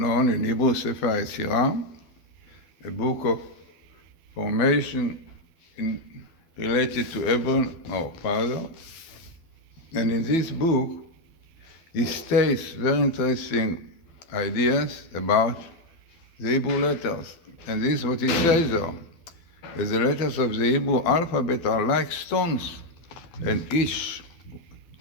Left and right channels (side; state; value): right; late; 12 ms